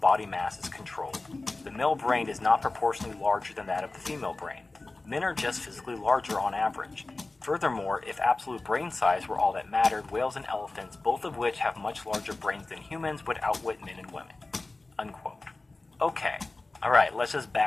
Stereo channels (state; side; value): quieter; right; 3.2 dB